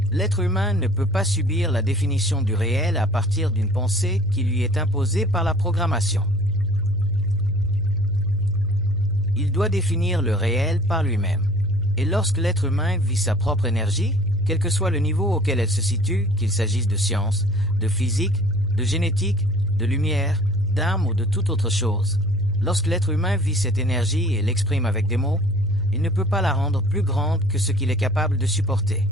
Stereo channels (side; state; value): right; noise; hum, 21 dB below the sound